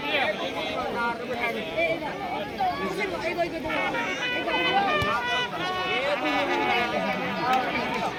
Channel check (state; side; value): identical; both; correlation 1.00